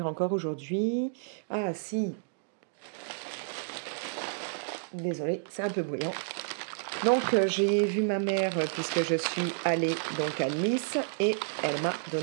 encore aujourd'hui... Ah, si. Désolée, c'est un peu bruyant. Donc, j'ai vu ma mère puisque je suis allée donc à Nice et elle m'a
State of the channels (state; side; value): silent; left; digital silence